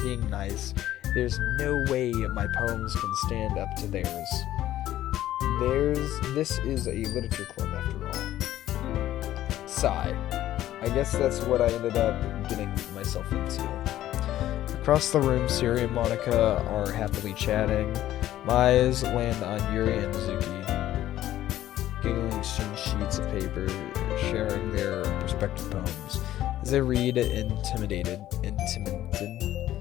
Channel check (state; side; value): quieter; right; 13.4 dB